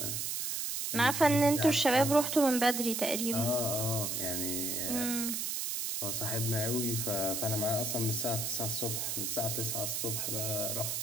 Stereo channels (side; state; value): right; noise; hiss, 1 dB below the sound